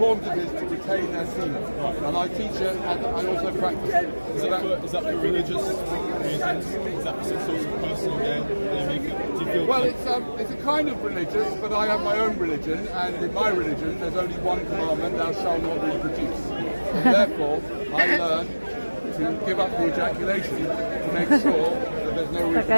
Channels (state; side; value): inverted; both; correlation -1.00